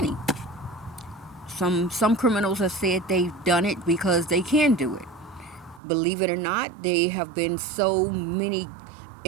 Some criminals have said they've done it because they can do it. Believe it or not, there have been so many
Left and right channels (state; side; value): drops out; left; at 5.8 s